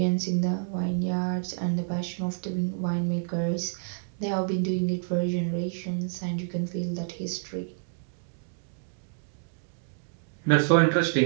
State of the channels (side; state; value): left; silent; digital silence